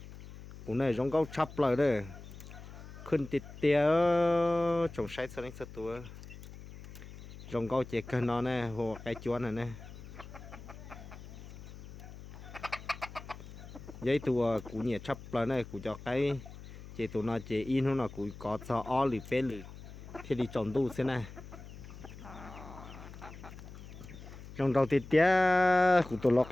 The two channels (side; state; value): left; noise; hum, 15 dB below the sound